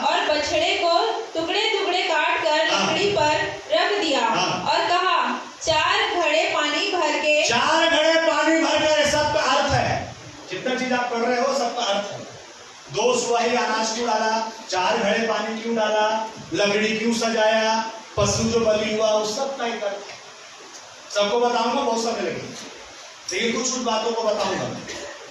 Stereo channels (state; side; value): identical; both; correlation 1.00